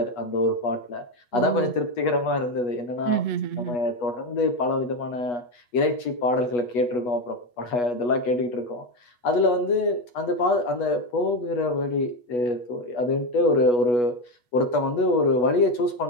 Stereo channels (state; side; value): late; right; 8.2 ms